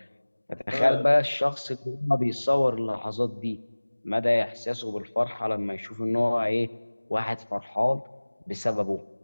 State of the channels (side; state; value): both; inverted; correlation -1.00